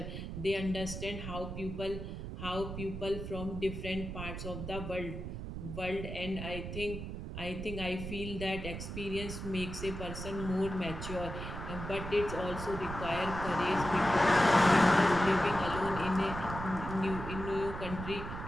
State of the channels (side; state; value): right; noise; rumble, 7 dB below the sound